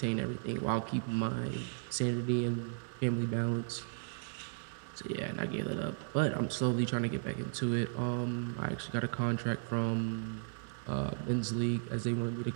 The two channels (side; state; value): left; silent; digital silence